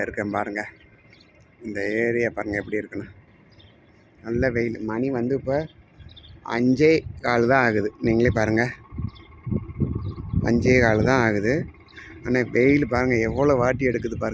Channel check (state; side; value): identical; both; correlation 1.00